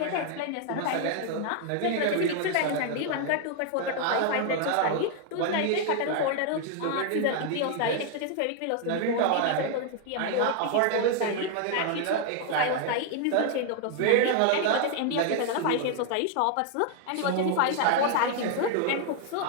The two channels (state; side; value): different; both; correlation 0.00